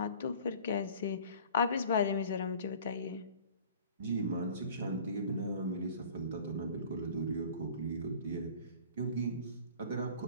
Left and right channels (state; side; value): inverted; both; correlation -0.46